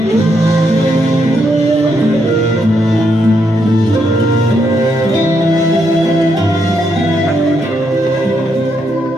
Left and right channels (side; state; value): both; normal; correlation 0.78